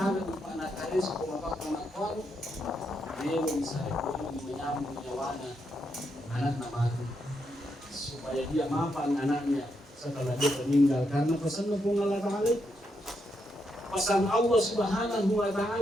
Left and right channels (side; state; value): both; normal; correlation 0.81